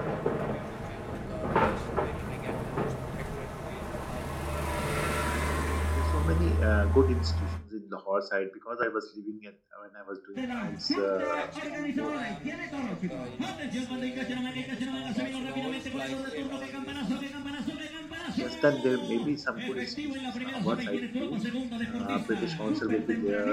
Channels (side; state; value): both; identical; correlation 1.00